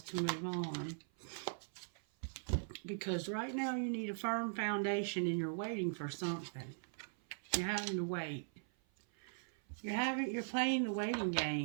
to move on? Because right now you need a firm foundation and you're waiting for something. You're having to wait. You're playing the waiting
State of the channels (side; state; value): left; silent; 51 dB below the other